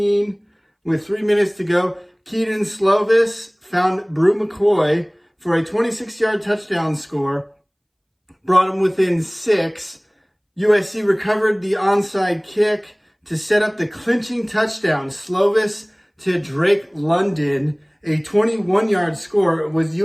with 3 minutes to go. Keaton Slovis found Brew McCoy for a 26-yard touchdown score, brought him within 6. USC recovered the onside kick to set up the clinching touchdown. Slovis to Drake London, a 21-yard score. It was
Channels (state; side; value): identical; both; correlation 1.00